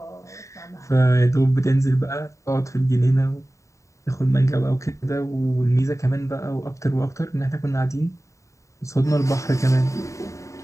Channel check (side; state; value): right; late; 0.15 ms